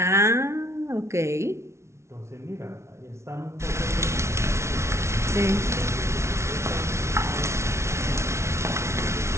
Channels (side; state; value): left; late; 0.13 ms